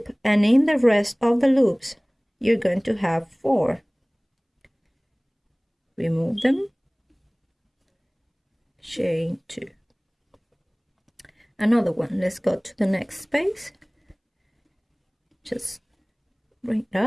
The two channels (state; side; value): identical; both; correlation 1.00